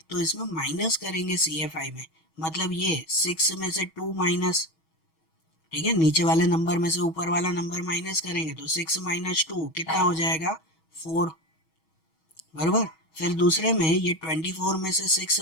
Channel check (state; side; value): late; right; 6.3 ms